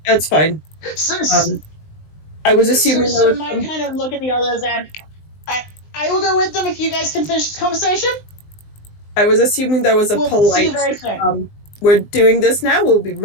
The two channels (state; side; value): late; right; 20 ms